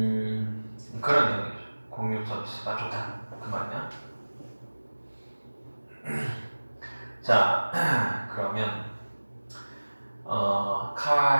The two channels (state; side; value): inverted; both; correlation -1.00